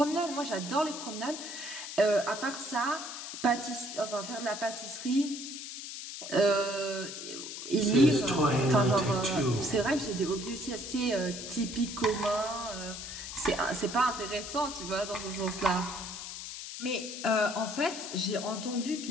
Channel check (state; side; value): noise; left; hiss, 8 dB below the sound